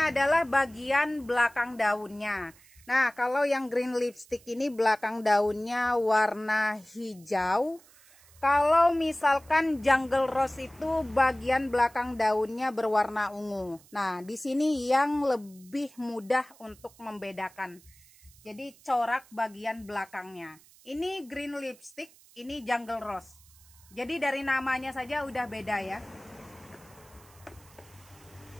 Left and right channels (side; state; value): right; noise; hiss, 26 dB below the sound